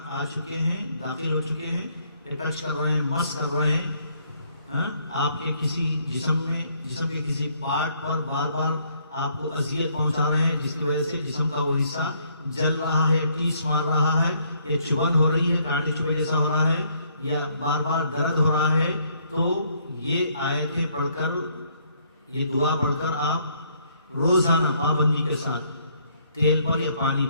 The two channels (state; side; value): inverted; both; correlation -0.68